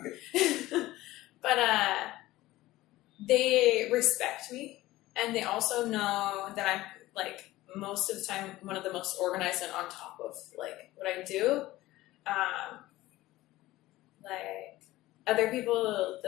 But they respect me, and they also know that I'm like most of the time one of the most organized and on top of like what I do. Like other people,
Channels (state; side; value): quieter; right; 17.3 dB